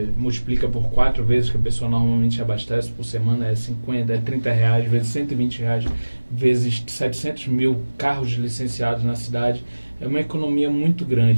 multiplica por 4 vezes que a pessoa normalmente abastece por semana, é 50, é R$30, vezes R$120, vezes 700 mil carros licenciados na cidade, é uma economia muito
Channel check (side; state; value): both; inverted; correlation -1.00